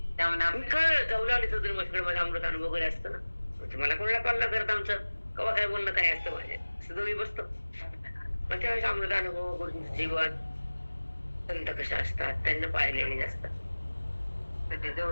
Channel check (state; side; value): inverted; both; correlation -1.00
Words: त्यामुळे काय जाऊ लागले चौधरी मस्कडे माझा अमृत अनुभव वगैरे असतं ना. मला कोणाला कॉल न करत आमचं कवा काय बोलणं काय असतं माझ्या, असं दोघी बसतो. मग त्यावेळेस अमृत अनुभव, गुरुजींचं जीवन, संत कशा असतात, त्यांना पाहिलेले असतात,